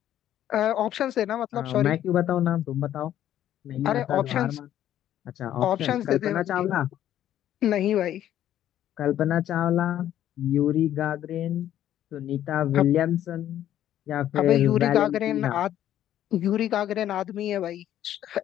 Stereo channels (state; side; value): quieter; right; 11.7 dB